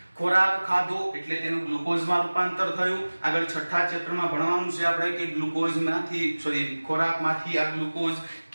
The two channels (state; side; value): inverted; both; correlation -1.00